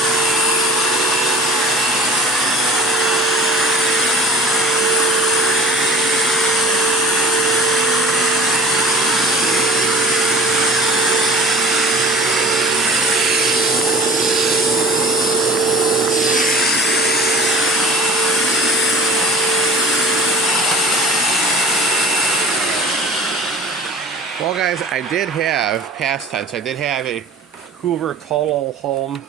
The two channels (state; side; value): normal; both; correlation 0.42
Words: Well, guys, I did have, past tense, I did have a Hoover Total Home